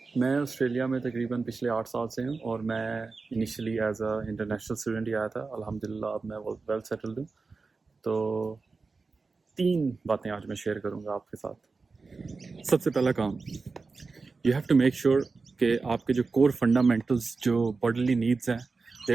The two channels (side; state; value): left; quieter; 4.2 dB